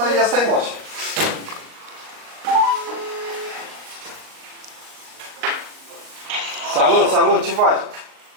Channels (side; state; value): left; late; 38 ms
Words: ia stai, mă, așa. Salut, salut, ce faci?